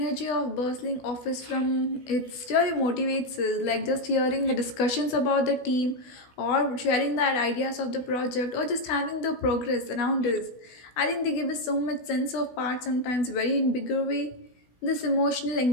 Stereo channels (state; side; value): late; right; 16 ms